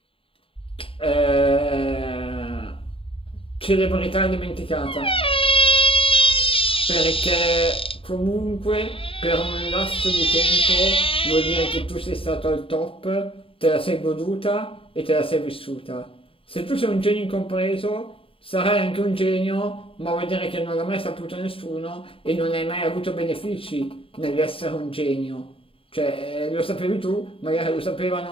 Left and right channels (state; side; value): late; right; 0.26 ms